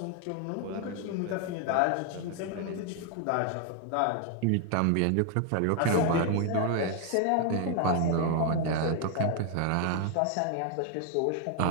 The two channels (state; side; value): different; both; correlation 0.00